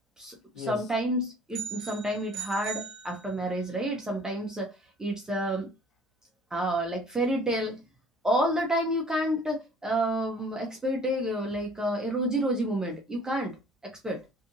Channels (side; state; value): both; normal; correlation 0.52